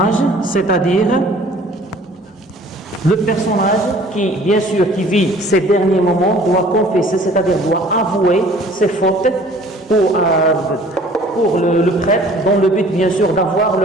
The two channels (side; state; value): both; normal; correlation 0.52